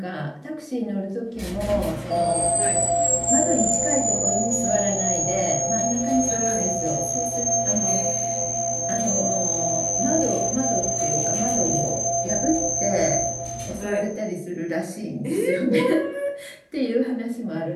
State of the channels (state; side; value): identical; both; correlation 1.00